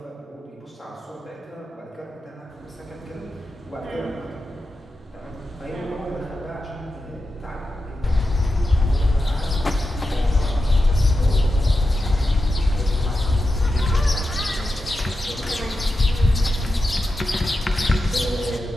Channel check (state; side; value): normal; both; correlation 0.90